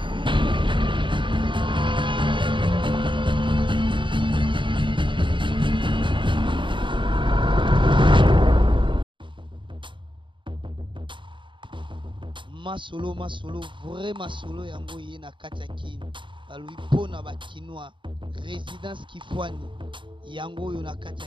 Masolo, vraiment solo yango ye na kati ya kini. Balui pona ba kinois, résidence Kifwani. Yango yo na kati ya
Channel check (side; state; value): left; late; 0.24 ms